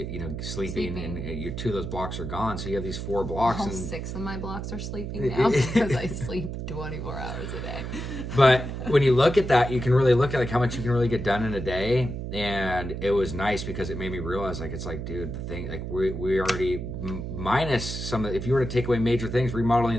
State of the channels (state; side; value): noise; right; hum, 6 dB below the sound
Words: sleeping. And your 2 of those blocks are gone. So you have these 4 blocks. All and 6 of my blocks are sleeping now because I sleep 24 hours a day. But when you look at that, you can really look at like how much you can really get done in a day. And it was nice because it made me realize, like, it's like, dude, the thing, like we already minus some, if you were to take away major things, remodeling